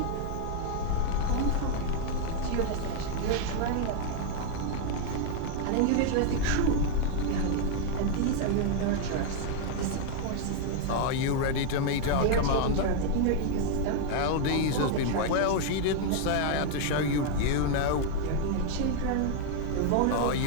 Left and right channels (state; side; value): different; both; correlation 0.00